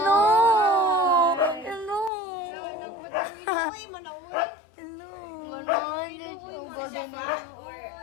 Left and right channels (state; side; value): drops out; right; at 2.1 s